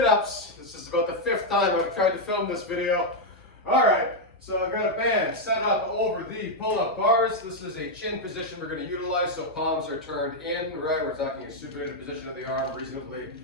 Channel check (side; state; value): both; normal; correlation -0.01